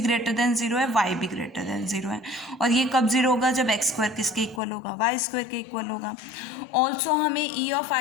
ग्रेटर देन 0 है, y भी ग्रेटर देन 0 है। और ये कब 0 होगा, जब एक्स स्क्वायर किसके इक्वल होगा, वाई स्क्वायर के इक्वल होगा। ऑल्सो हमें ई ऑफ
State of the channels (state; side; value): drops out; right; at 4.6 s